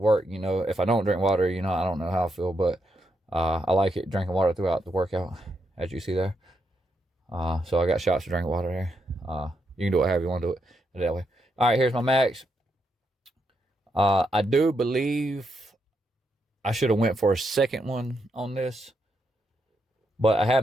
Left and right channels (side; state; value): both; normal; correlation 0.81